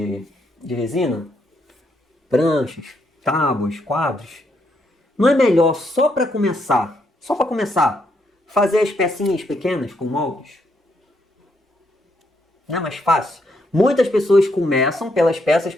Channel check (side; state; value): both; normal; correlation 0.76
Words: resina, pranchas, tábuas, quadros, não é melhor só para começar, fazer as pecinhas pequenas com moldes? Não é mais fácil? Muitas pessoas começam pelas peças